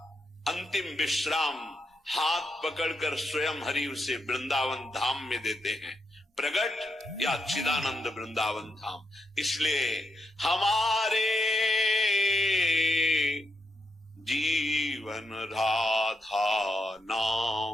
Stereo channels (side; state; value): both; normal; correlation 0.82